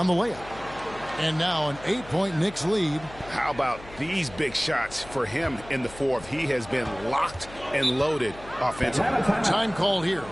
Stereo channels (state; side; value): noise; left; hum, 18 dB below the sound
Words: the layup. And now an 8-point Knicks lead. How about these big shots for him in the fourth? He has been locked and loaded offensively. Time called here.